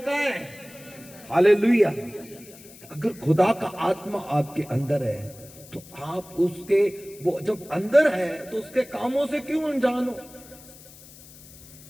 कहां है? हालेलुया। अगर खुदा का आत्मा आपके अंदर है तो आप उसके, वो जब अंदर है तो उसके कामों से क्यों अनजान हो?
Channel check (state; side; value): noise; left; hiss, 20 dB below the sound